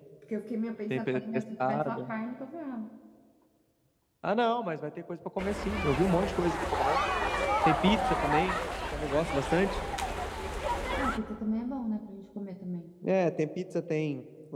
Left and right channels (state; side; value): identical; both; correlation 1.00